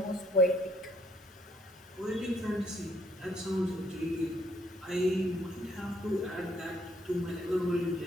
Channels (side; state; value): both; normal; correlation 0.68